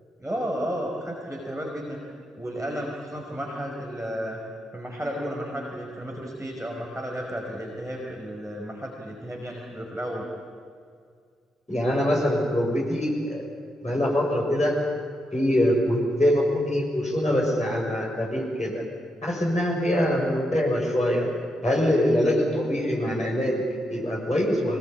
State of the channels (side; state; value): both; normal; correlation 0.83